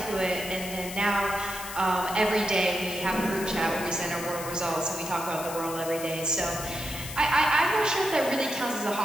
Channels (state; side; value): noise; left; hiss, 10 dB below the sound